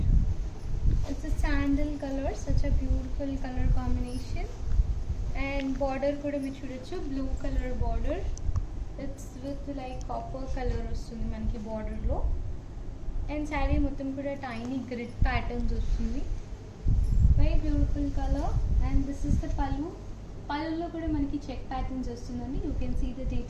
It's a sandal color. Such a beautiful color combination. And border kuda మీరు చూడొచ్చు, blue color border. It's with like copper color వస్తుంది మనకి border లో. And saree మొత్తం కూడా tiny grid patterns వస్తుంది. Very beautiful beautiful color. And this is the pallu. Pallulo kuda manaki check patterns vastundandi. You can see the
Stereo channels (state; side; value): identical; both; correlation 1.00